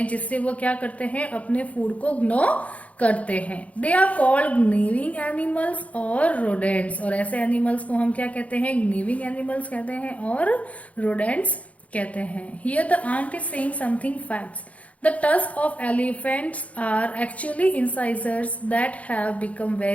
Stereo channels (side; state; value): right; late; 0.066 ms